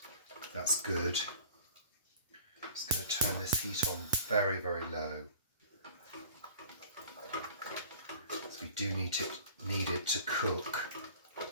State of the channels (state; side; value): inverted; both; correlation -0.49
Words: That's good. I'm just going to turn this heat on very, very low. So we do need it to cook.